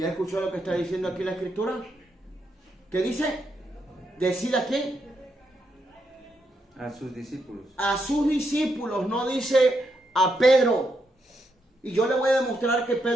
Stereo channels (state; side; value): normal; both; correlation 0.80